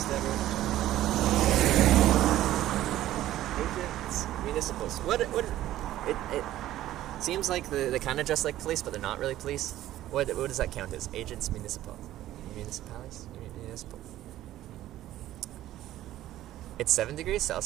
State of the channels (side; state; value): left; quieter; 13.9 dB